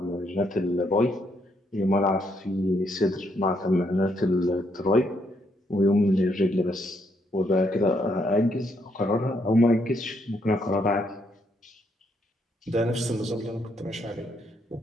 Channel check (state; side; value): normal; both; correlation 0.74